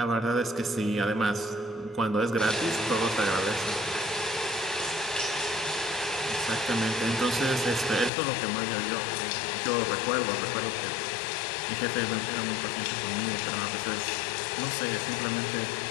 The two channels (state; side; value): drops out; right; at 8.1 s